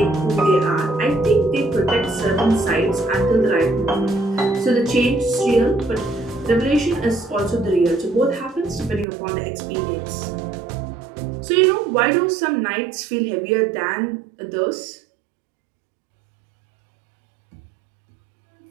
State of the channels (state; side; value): drops out; left; at 9.1 s